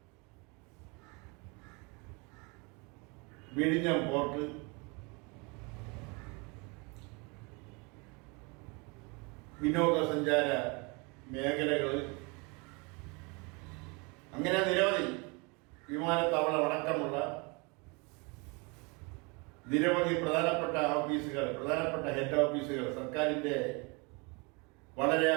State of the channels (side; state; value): left; quieter; 29.8 dB